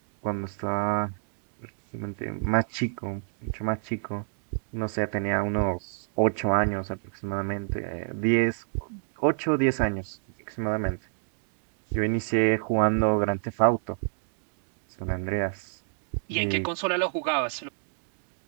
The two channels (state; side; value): silent; left; 59 dB below the other